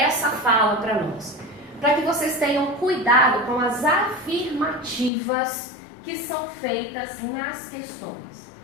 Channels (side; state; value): right; drops out; at 5.1 s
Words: fala para nós? Para que vocês tenham cuidado com as afirmativas que são feitas nas questões.